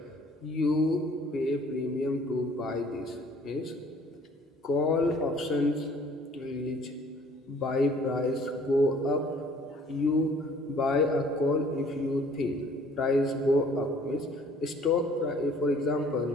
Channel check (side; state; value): both; normal; correlation 0.56